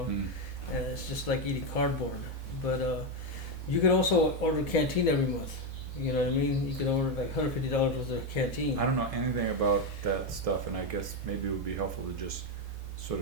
it's just like eating cardboard. But you can also order canteen every month. You know what I mean? You can order like $150 worth of canteen. I don't know anything about that stuff, and I guess maybe it would be helpful to just sort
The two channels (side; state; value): both; normal; correlation 0.07